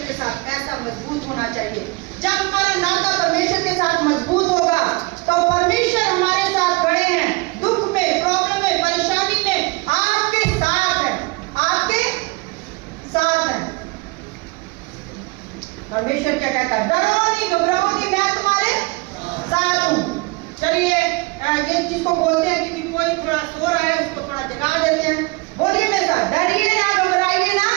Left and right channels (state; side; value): quieter; left; 25.5 dB